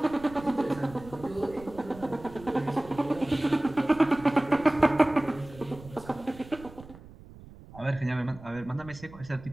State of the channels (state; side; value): noise; right; rumble, 18 dB below the sound